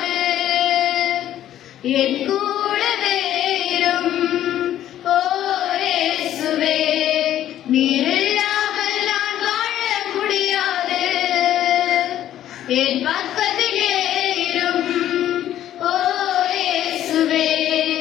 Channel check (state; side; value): quieter; right; 12.0 dB